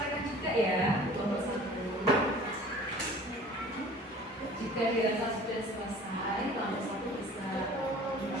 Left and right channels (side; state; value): both; normal; correlation 0.46